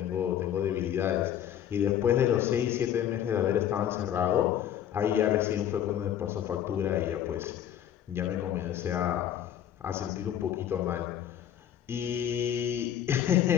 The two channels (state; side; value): quieter; right; 10.4 dB